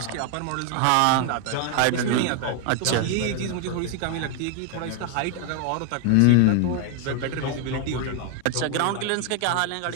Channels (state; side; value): different; both; correlation 0.00